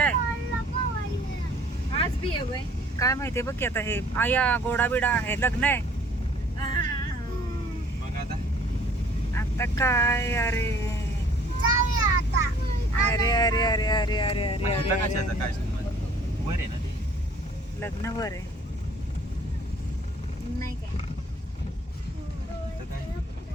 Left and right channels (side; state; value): both; normal; correlation 0.55